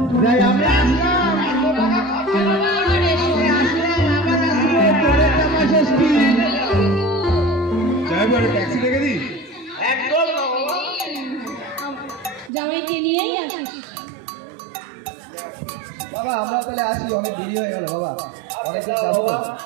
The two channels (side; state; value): left; drops out; at 12.5 s